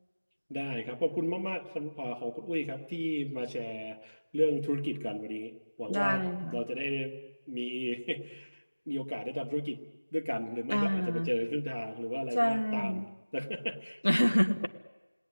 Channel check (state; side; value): inverted; both; correlation -1.00